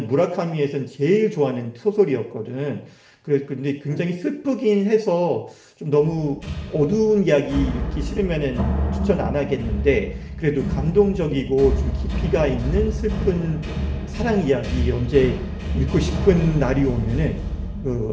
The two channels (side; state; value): both; identical; correlation 1.00